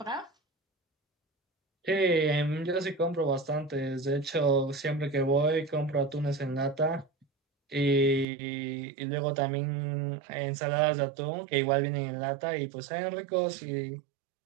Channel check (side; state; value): left; drops out; at 8.2 s